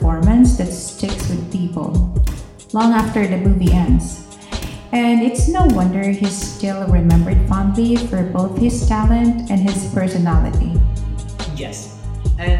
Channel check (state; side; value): identical; both; correlation 1.00